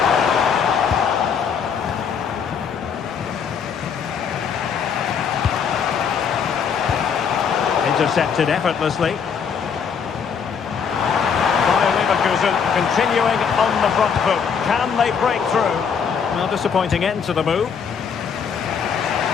Intercepted effortlessly. Continuing on the front foot. Can they break through? Well, disappointing end to the move.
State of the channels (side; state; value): right; quieter; 6.7 dB